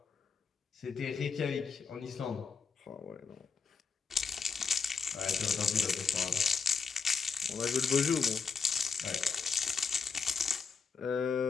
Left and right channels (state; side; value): quieter; right; 5.4 dB